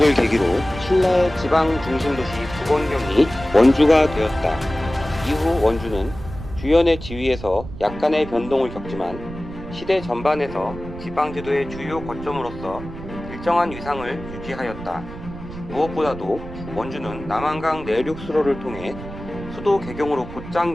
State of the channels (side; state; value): right; noise; rumble, 12 dB below the sound